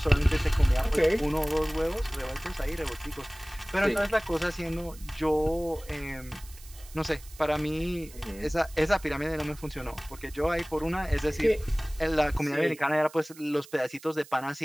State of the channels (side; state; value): right; noise; hiss, 20 dB below the sound